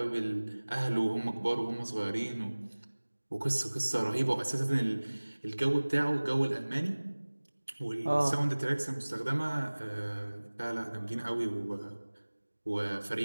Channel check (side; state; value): both; inverted; correlation -1.00